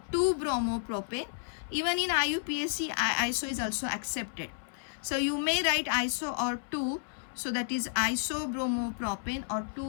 2-bromopropane. Even in IUPAC, iso is also accepted. So you may write iso or 2. So that is isobromopropane or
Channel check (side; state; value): right; silent; 57 dB below the other